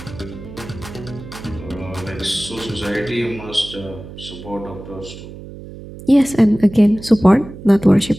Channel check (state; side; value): noise; right; hum, 14 dB below the sound